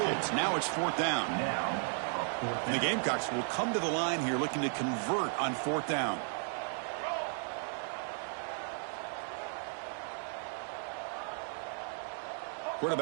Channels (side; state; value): left; silent; 55 dB below the other